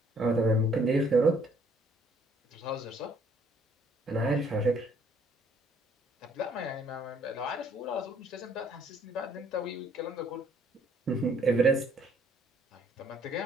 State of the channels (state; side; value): normal; both; correlation 0.63